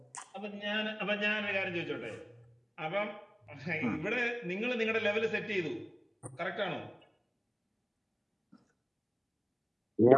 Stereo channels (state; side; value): identical; both; correlation 1.00